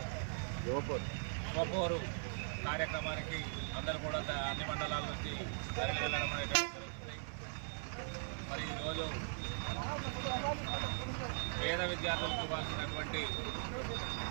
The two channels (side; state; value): left; silent; 51 dB below the other